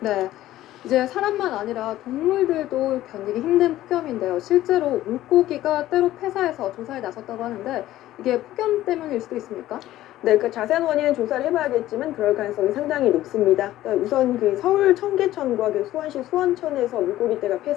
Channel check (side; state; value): right; quieter; 14.5 dB